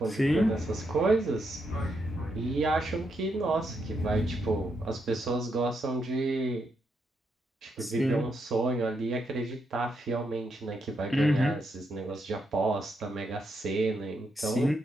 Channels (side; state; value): both; normal; correlation 0.80